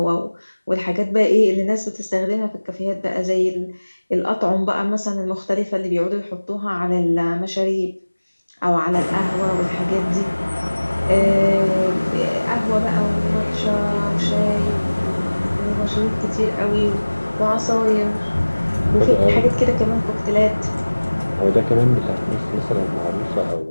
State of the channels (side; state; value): both; inverted; correlation -1.00